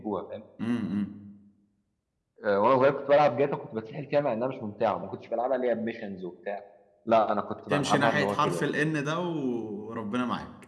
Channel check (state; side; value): identical; both; correlation 1.00